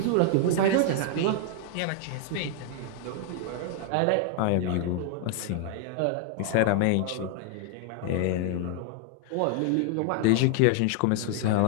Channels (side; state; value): both; different; correlation 0.00